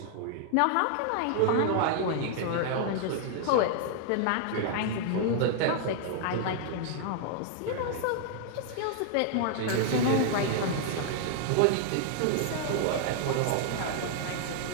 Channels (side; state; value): both; different; correlation -0.01